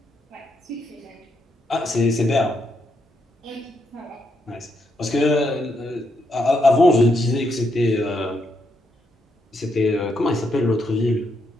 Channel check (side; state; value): both; normal; correlation 0.79